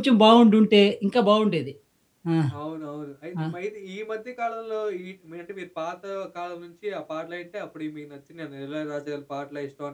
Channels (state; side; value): identical; both; correlation 1.00